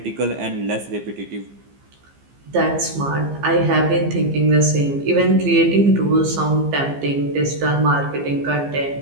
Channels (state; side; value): late; left; 15 ms